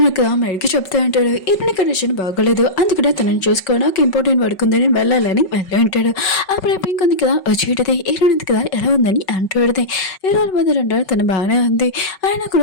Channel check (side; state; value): right; late; 5.3 ms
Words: మెడికి చెప్తా అంటాడు, ఇతని కండిషన్ బాగోలేదు అందుకనే తనని చూసుకోవడానికి ఇంపార్టెంట్ వర్క్ ఉందని వెళ్ళాలని వెళ్ళి ఉంటాడు. అప్పుడు పింక్ ఉంది కదా వచ్చేటది హీరోయిన్ ఉంది కదా ఎలా ఉందని అంటాడు. హీరోల బెదిరి అంటాడు, తను బాగానే ఉంది, ఆయన